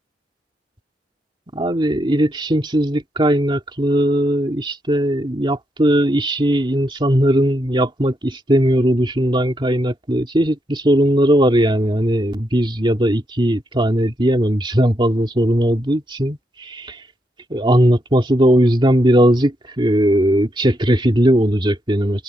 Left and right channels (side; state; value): both; normal; correlation 0.80